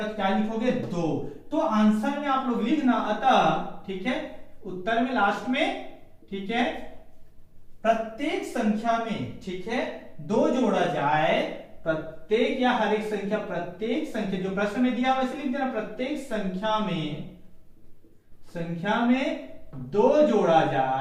तो क्या लिखोगे 2। तो आंसर में आप लोग लिखना अतः, ठीक है, उत्तर में लास्ट में, ठीक है, प्रत्येक संख्या में, ठीक है, 2 जोड़ा जाए, प्रत्येक या हर एक संख्या, प्रत्येक संख्या जो प्रश्न में दिया वैसे लिख देना, प्रत्येक संख्या में 2 जोड़ा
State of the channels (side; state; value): both; identical; correlation 1.00